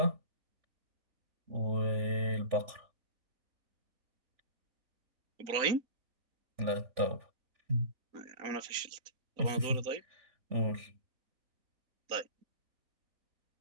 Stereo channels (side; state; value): left; late; 3.5 ms